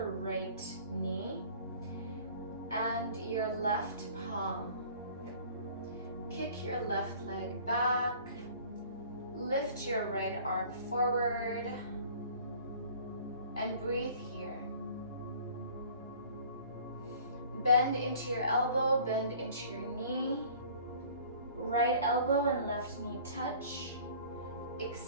right knee and your left palm. Kick your left leg back. Lift your right arm forward and breathe here. Bend into your elbow, bend into your knee. Right elbow and left knee touch.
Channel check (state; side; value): inverted; both; correlation -0.49